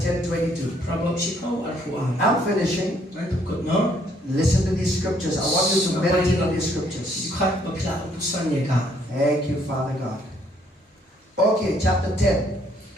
22. I'm finishing. Listen to these scriptures. I want you to meditate on these scriptures. Thank you, Father God. Okay, chapter 10.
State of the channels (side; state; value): both; normal; correlation 0.67